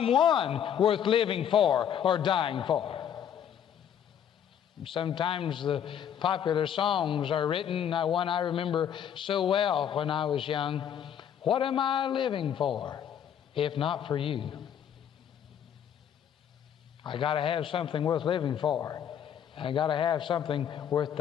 worth living for or dying for. Sometimes the popular songs are written, one I remember so well when I was young. What am I living for, if not for you? I got to have something worth living for. I got to have something worth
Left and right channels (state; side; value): quieter; right; 9.1 dB